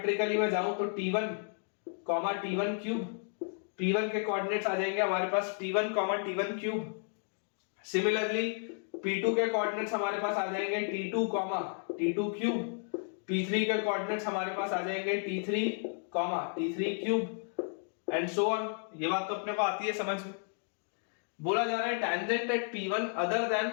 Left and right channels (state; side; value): silent; right; 56 dB below the other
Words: मैं जाऊं तो T1, T1 क्यूब। P1 के कोऑर्डिनेट्स आ जाएंगे हमारे पास T1, T1 cube. Similarly P2 के कोऑर्डिनेट्स हमारे पास आ जाएंगे T2, T2 क्यूब। P3 के कोऑर्डिनेट्स हमारे पास आ जाएंगे T3, T3 cube and so on. ये बात तो अपने को आती है समझ में। बोला जा रहा है tangent at P1 other than